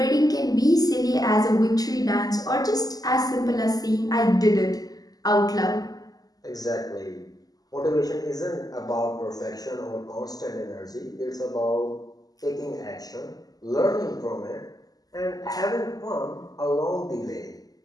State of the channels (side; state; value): right; late; 0.18 ms